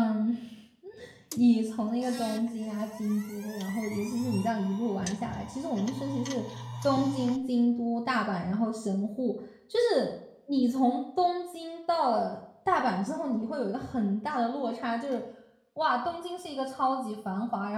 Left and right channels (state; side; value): identical; both; correlation 1.00